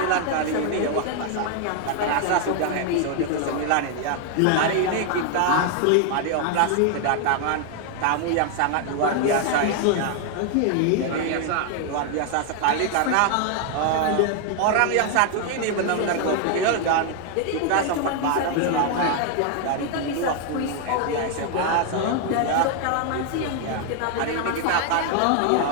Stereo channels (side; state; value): both; different; correlation 0.00